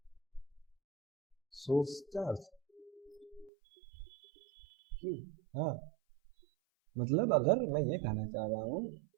source charge Q. हाँ, मतलब अगर मैं ये कहना चाह रहा हूँ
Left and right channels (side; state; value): left; drops out; at 3.5 s